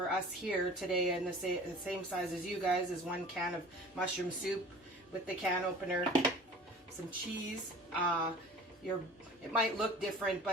here today, and the same size as you guys, is 1 can of mushroom soup with the can opener, some cheese. It might look different,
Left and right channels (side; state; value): both; normal; correlation 0.43